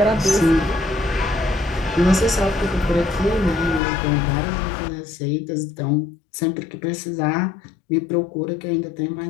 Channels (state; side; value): drops out; right; at 3.8 s